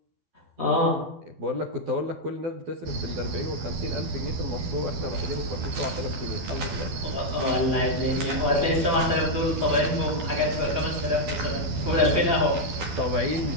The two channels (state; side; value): late; left; 12 ms